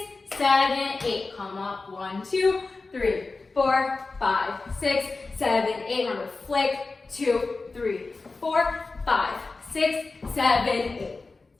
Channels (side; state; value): right; quieter; 3.8 dB